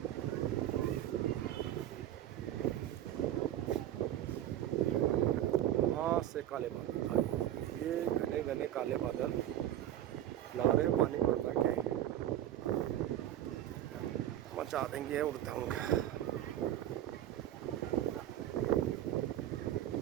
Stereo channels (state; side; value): quieter; left; 12.2 dB